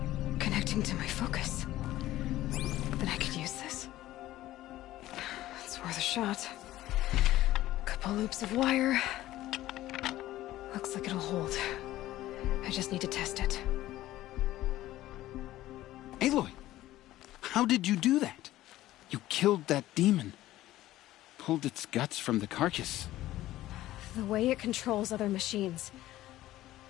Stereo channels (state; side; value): quieter; right; 15.2 dB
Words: connecting to my focus. Then I could use this. It's worth a shot. Couple loops of wire. Looks like it'll hold. I just need to test it. Aloy! How did you do that? You killed that demon. Pulled its guts from the carcass. The way it controls other machines.